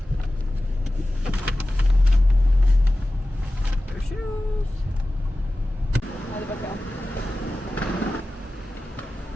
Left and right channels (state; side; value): normal; both; correlation 0.95